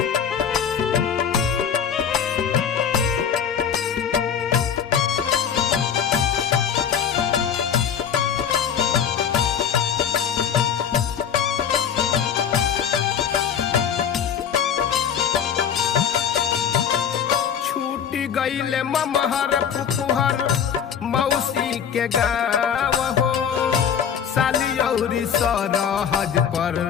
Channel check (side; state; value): right; quieter; 8.0 dB